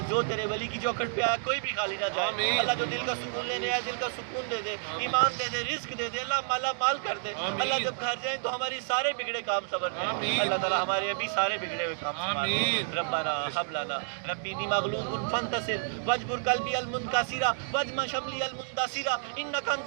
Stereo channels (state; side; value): silent; left; digital silence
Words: جو تیرے ولی کی چوکھٹ پہ آیا کوئی بھی خالی نہ جائے، اللہ جو دل کا سکون لینے آئے دل کا سکون دے دے، ایمان دے دے، رزق دے دے، اللہ مالا مال کر دے، اللہ جب گھر جائیں تو ہماری سارے بگڑے کام سنور جائیں، اللہ تعالیٰ ہمارے ابھی سارے بگڑے ہوئے کام سنوار دے، ربنا حب لنا ربی انی مغلوب فانتصر واجبر قلبی المنکسرا واجمع شملی المندثرا انک